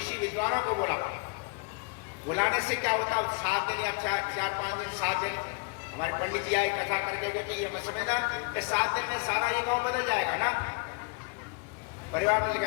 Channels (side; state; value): right; quieter; 32.6 dB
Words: विद्वानों को बुलाने से क्या होता है? 7 दिन या 4-5 दिन, 7 दिन हमारे पंडित जी आए कथा करके गए कि ये मत समझना कि 7 दिन में सारा ये गांव बदल जाएगा ना, परिवार में